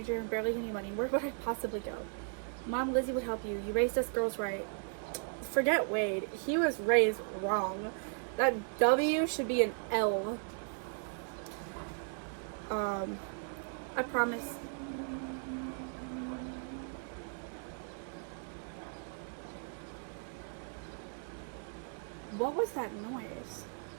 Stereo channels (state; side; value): silent; left; 54 dB below the other